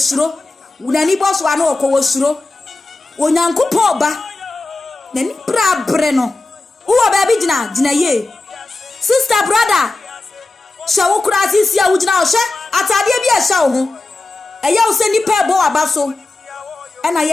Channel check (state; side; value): quieter; right; 3.1 dB